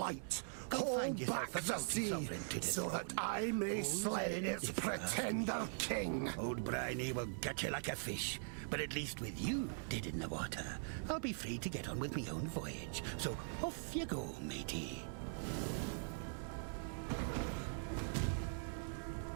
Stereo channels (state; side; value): silent; left; digital silence